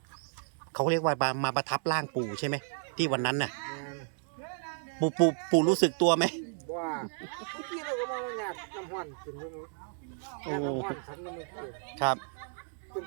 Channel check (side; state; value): left; silent; 56 dB below the other